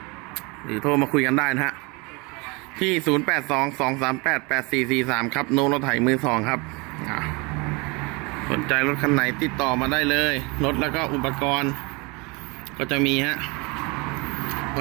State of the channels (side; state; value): left; quieter; 27.8 dB